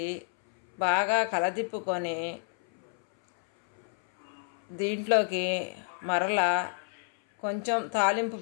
బాగా కలదిప్పుకొని దీంట్లోకి మరలా కొంచెం తాలింపు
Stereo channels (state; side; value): silent; right; 58 dB below the other